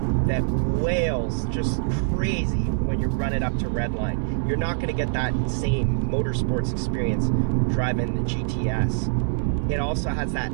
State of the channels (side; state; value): left; silent; 62 dB below the other